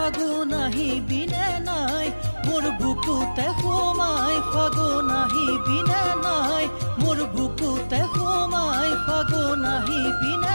আহিবিনে নাই মোৰ বুকুতে সোমাই ফাগুন আহিবিনে নাই মোৰ বুকুতে সোমাই ফাগুন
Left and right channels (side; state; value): both; inverted; correlation -1.00